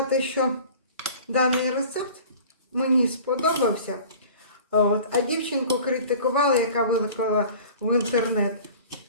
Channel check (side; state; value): both; inverted; correlation -0.44